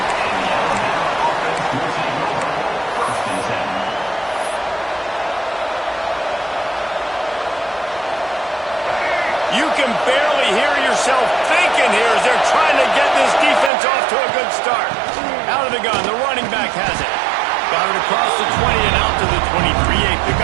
You can barely hear yourself thinking here as they're trying to get this defense off to a good start. Out of the gun, the running back has it. Got it across the 20 and out to the 23, a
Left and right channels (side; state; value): left; drops out; at 13.7 s